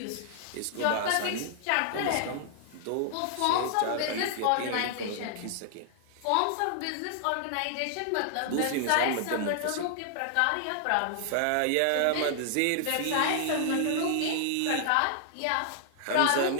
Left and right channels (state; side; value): different; both; correlation -0.01